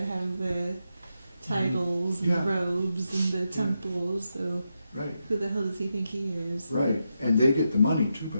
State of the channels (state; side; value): inverted; both; correlation -0.86